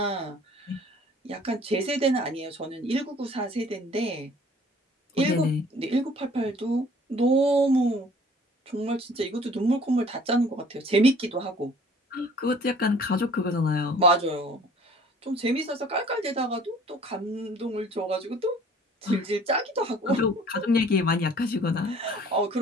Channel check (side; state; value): both; normal; correlation 0.52